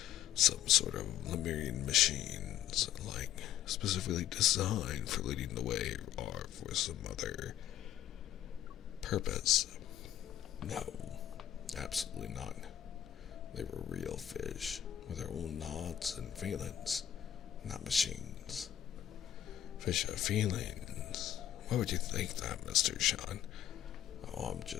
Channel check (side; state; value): right; quieter; 11.3 dB